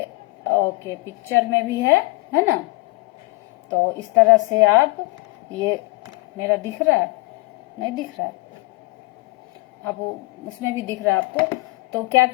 ओके पिक्चर में भी है ना। तो इस तरह से आप, ये मेरा दिख रहा है, नहीं दिख रहा है, अब उसमें भी दिख रहा है आपको। तो क्या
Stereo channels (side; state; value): right; quieter; 24.2 dB